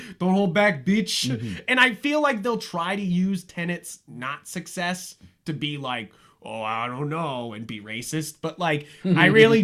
Don't hold back, bitch. Mm-hmm. And I feel like they'll try to use Tenet's not success to be like, oh, I don't know, and be racist. But like, I really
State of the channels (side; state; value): both; identical; correlation 1.00